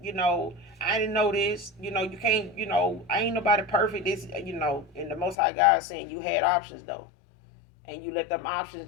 I didn't know this. You can't, I ain't nobody perfect. This, and the Most High God saying you had options, though. And you let them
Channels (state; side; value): drops out; right; at 5.4 s